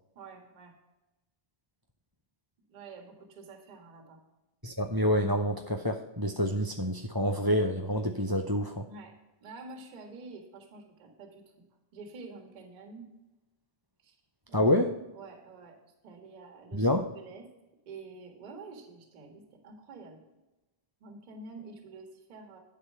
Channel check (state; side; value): late; left; 1.0 ms